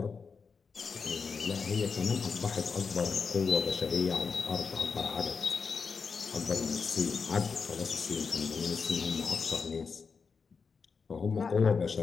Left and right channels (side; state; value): right; quieter; 5.3 dB